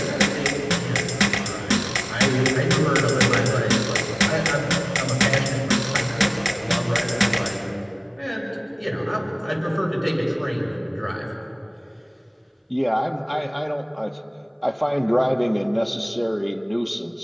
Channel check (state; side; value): identical; both; correlation 1.00